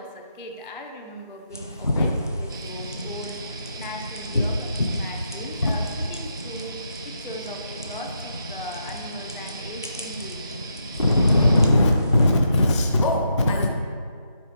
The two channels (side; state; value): both; inverted; correlation -0.80